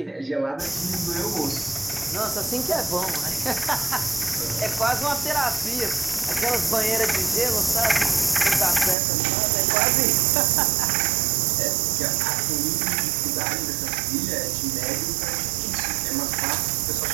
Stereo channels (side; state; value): left; drops out; at 9.0 s